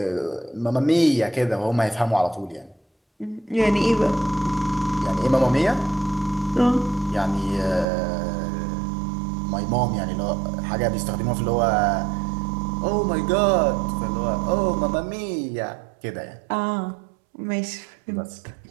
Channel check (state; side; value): drops out; left; at 7.9 s